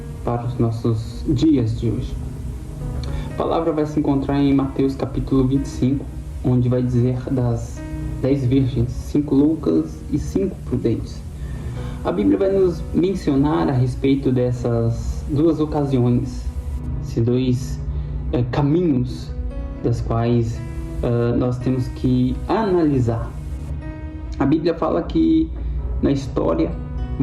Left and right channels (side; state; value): both; identical; correlation 1.00